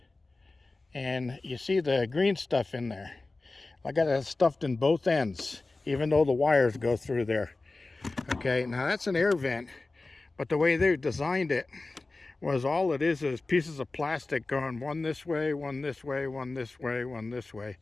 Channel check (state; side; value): quieter; right; 3.3 dB